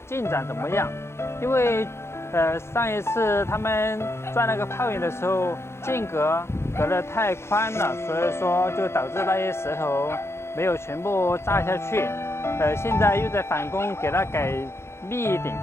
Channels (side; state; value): right; late; 0.13 ms